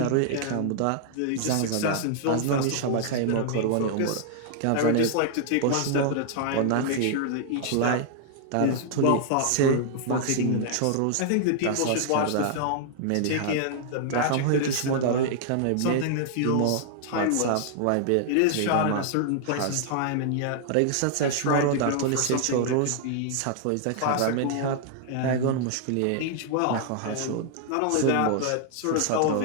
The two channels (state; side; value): different; both; correlation 0.00